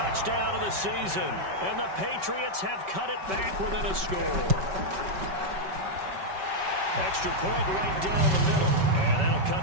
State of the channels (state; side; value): late; left; 5.3 ms